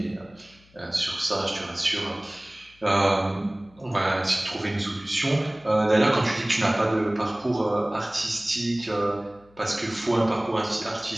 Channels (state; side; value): noise; left; hum, 29 dB below the sound